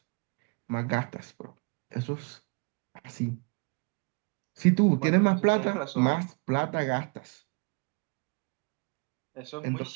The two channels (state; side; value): quieter; left; 32.2 dB